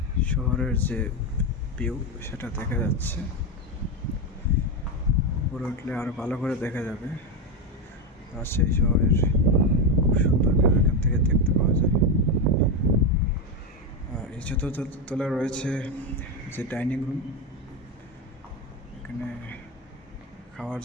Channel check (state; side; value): normal; both; correlation 0.11